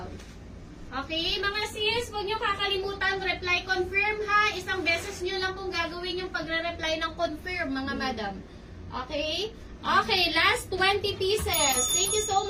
Okay, mga sis, huwag nyo kakalimutan, reply confirm ha. Isang beses nyo lang kung gagawin yung pagre-reply ng confirm, mga madam. Okay? Okay, last 20 pieces. Thank you so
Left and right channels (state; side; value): identical; both; correlation 1.00